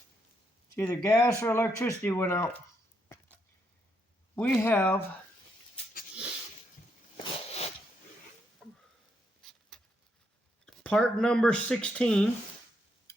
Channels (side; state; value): both; normal; correlation 0.77